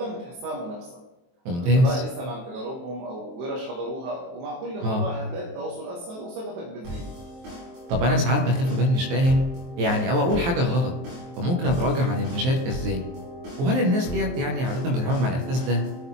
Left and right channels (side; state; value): left; late; 23 ms